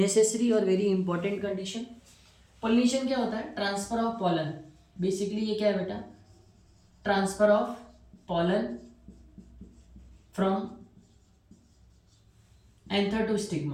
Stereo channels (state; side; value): identical; both; correlation 1.00